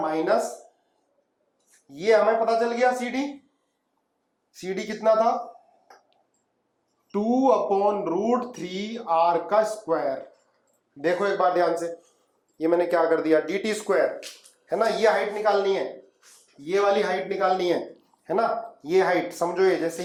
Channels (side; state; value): both; identical; correlation 1.00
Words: माइनस, ये हमें पता चल गया CD कितना था, 2/√3R का स्क्वायर। देखो एक बार ध्यान से, ये मैंने क्या कर दिया, dt², है ना, ये हाइट निकालनी है, ये वाली हाइट निकालनी है ना, ये हाइट समझो, ये जैसे